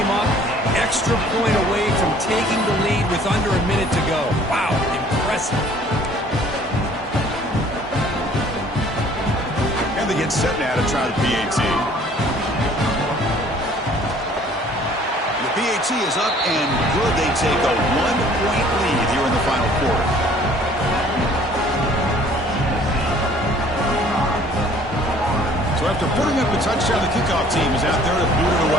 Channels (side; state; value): both; normal; correlation 0.55